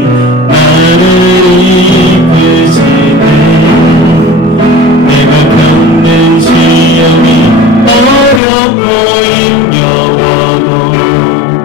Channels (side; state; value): right; drops out; at 8.4 s